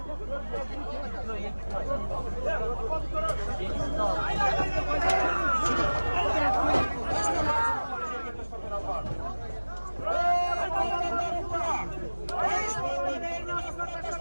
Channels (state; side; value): inverted; both; correlation -1.00